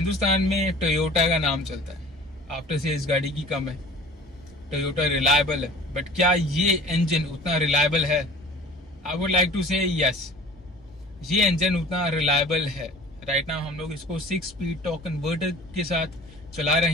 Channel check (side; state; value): both; normal; correlation 0.45